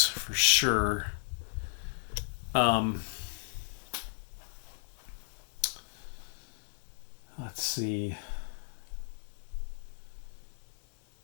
for sure. Let's see.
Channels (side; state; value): right; silent; digital silence